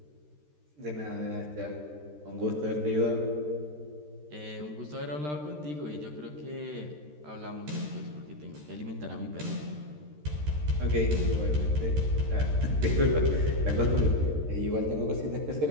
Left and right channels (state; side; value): late; left; 13 ms